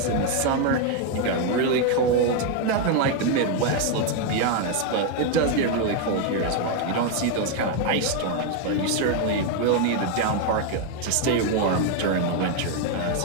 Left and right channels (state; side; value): different; both; correlation 0.01